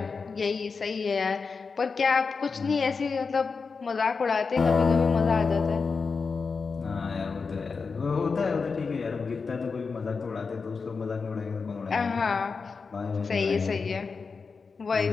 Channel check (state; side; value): quieter; right; 4.9 dB